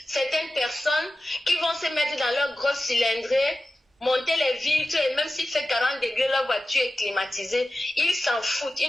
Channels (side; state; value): both; normal; correlation 0.94